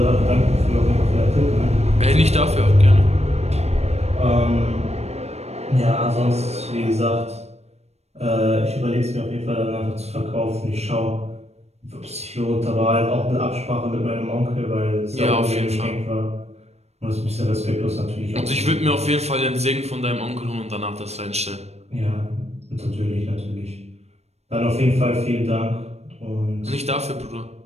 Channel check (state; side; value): late; left; 0.31 ms